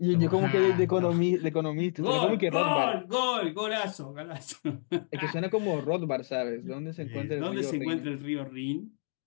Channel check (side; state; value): right; silent; 58 dB below the other